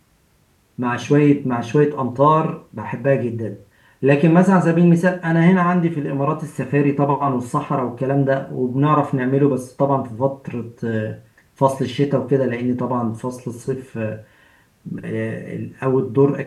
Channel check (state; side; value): identical; both; correlation 1.00